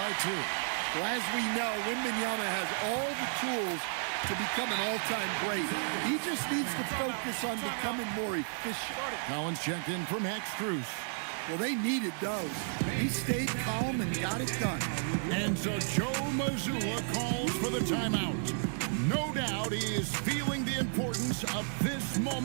2. Well, as we know, Wembanyama has all the tools to become an all-time great. He just needs to focus on becoming more efficient. Collins checked in for Max Strus. Well, they needed those. He stayed calm and got it done. And so Joe Mazzulla calls for the timeout. No doubt he is feeling the importance of this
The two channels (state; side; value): silent; left; digital silence